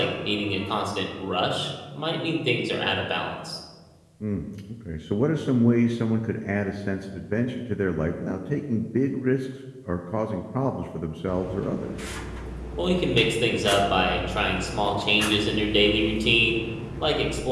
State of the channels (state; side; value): identical; both; correlation 1.00